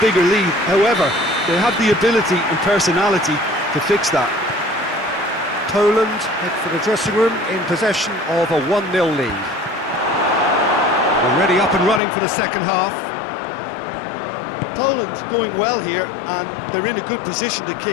lead. However, they have the ability and personality to fix that. Poland head for the dressing room in possession of a 1-0 lead. Already up and running for the second half. Poland going well here, and they're in a good position to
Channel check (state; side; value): drops out; right; at 12.0 s